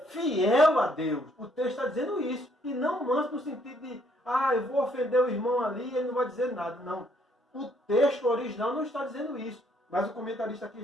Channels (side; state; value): both; normal; correlation 0.68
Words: fiel a Deus, o texto está dizendo isso. E não manso no sentido de, eu vou ofender o irmão ali e ele não vai dizer nada. Não. O texto original não está dizendo isso. Mas o comentarista aqui